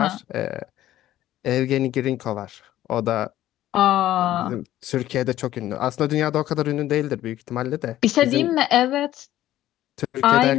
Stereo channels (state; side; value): quieter; right; 13.6 dB